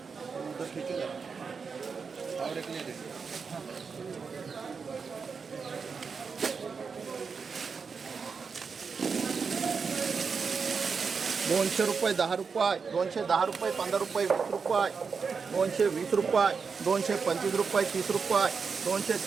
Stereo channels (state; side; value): quieter; left; 5.4 dB